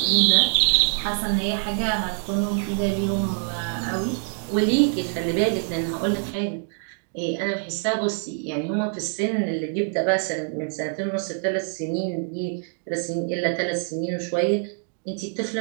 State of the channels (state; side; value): silent; left; 60 dB below the other